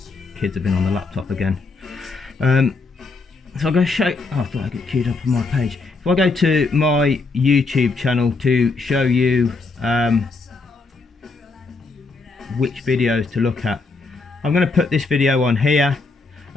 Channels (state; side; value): quieter; right; 3.9 dB